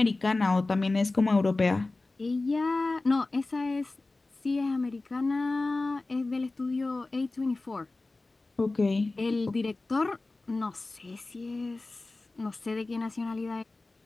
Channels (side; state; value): right; quieter; 3.2 dB